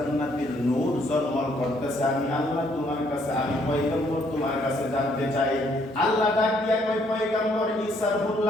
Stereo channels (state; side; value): normal; both; correlation 0.68